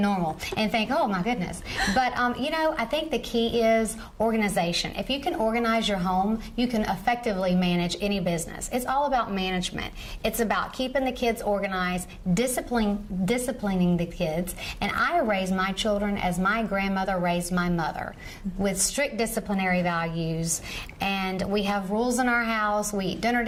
and think, oh my goodness. But you know, I think the key is organization. If you can organize your home, you can effectively manage any business. It's all about management. It's about keeping the kids organized, disciplining the kids. And I raise my children as my grandmother raised my mother, with strict disciplinary values. And we have rules in our house. We eat dinner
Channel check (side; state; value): both; identical; correlation 1.00